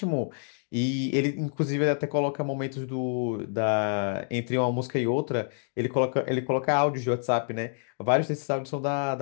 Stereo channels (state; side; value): silent; right; digital silence